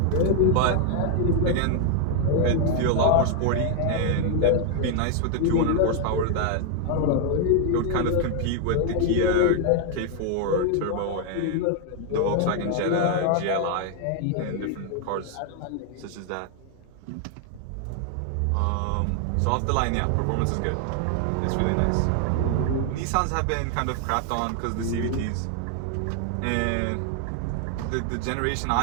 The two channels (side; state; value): both; different; correlation 0.00